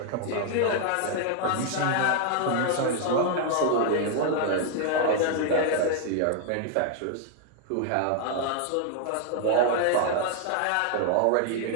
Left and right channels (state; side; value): different; both; correlation 0.00